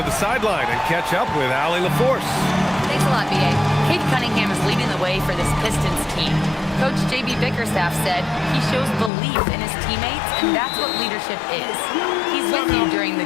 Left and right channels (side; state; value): right; drops out; at 9.1 s